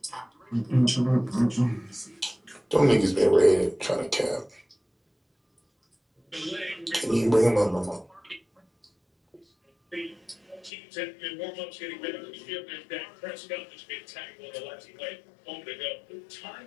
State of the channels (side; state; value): right; drops out; at 10.7 s